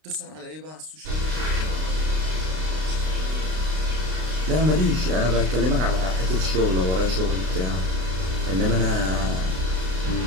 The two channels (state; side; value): late; left; 32 ms